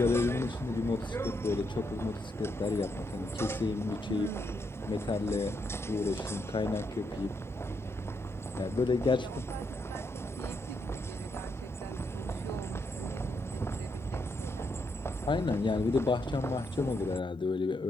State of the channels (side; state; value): both; normal; correlation 0.79